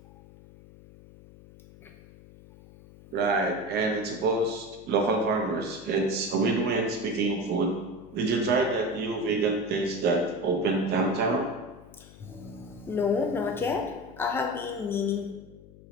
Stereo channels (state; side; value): noise; left; hum, 21 dB below the sound